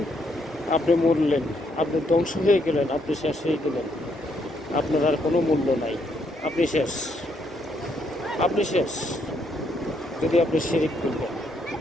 আপনি মরলেন, আপনি ধ্বংস হয়ে গেলেন, আপনি শেষ হয়ে গেলেন, আপনার আর কোনো মূল্য নাই, আপনি শেষ যদি আপনি শিরিক করবেন।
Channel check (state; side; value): normal; both; correlation 0.74